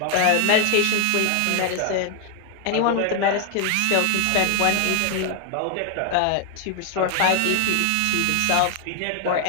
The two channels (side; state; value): both; different; correlation 0.00